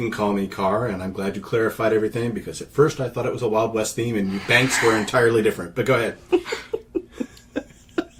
call me Carr, and I'm glad you clarified everything, because at first I thought it was a Wild West theme, and banks were entirely different. But go ahead.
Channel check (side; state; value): both; identical; correlation 1.00